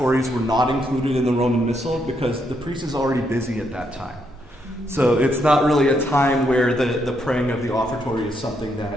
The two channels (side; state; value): both; normal; correlation 0.77